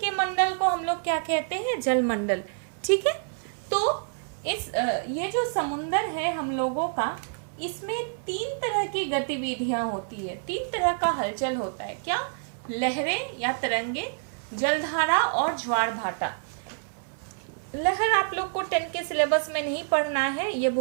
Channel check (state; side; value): silent; left; 59 dB below the other